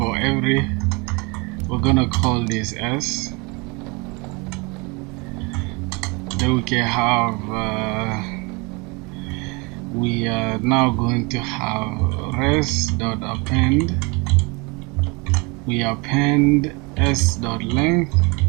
every, we're gonna call this s. Then we can have we are now going to have res.append. We append s.length,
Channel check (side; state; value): left; quieter; 28.3 dB